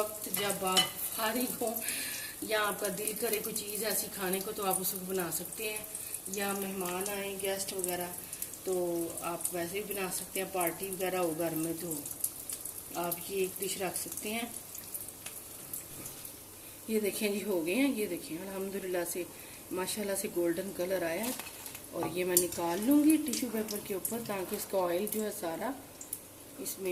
जब आप फारिग हो या आपका दिल करे कोई चीज़ ऐसी खाने को, तो आप उसको बना सकते हैं। या मेहमान आए, गेस्ट वगैरह, तो आप वैसे भी बना सकते हैं। पार्टी वगैरह हो घर में तो आप ये एक डिश रख सकते हैं। ये देखें जी, हो गए हैं। ये देखें, अल्हम्दुलिल्लाह से माशाल्लाह से गोल्डन कलर आया है। और ये मैं निकाल लूँगी टिश्यू पेपर के ऊपर, ताकि इसका ऑयल जो है सारा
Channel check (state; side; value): identical; both; correlation 1.00